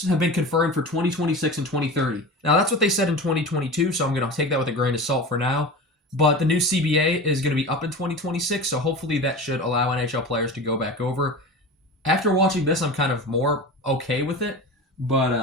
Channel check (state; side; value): normal; both; correlation 0.31